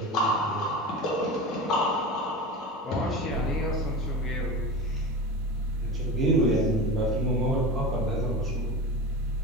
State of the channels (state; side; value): normal; both; correlation 0.28